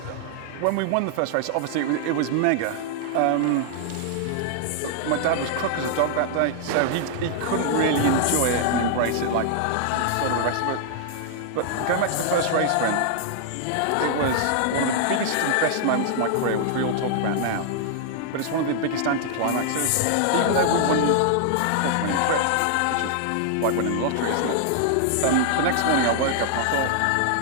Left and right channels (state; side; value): different; both; correlation -0.01